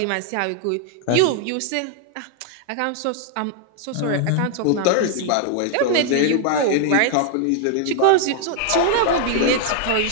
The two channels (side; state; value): both; different; correlation 0.00